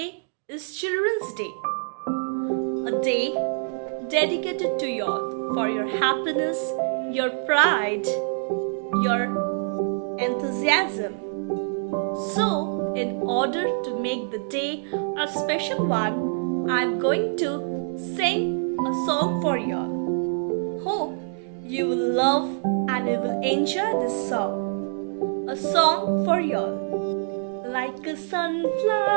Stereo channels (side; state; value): left; silent; digital silence